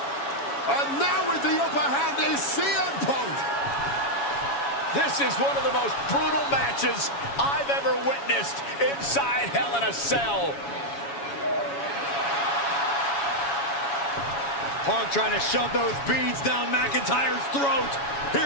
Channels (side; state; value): right; late; 7.2 ms